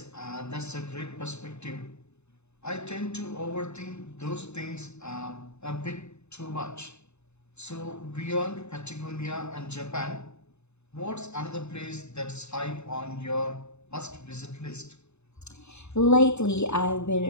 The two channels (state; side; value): late; right; 0.81 ms